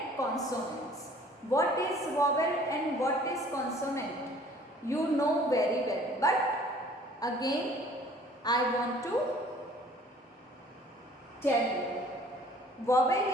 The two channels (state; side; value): normal; both; correlation 0.53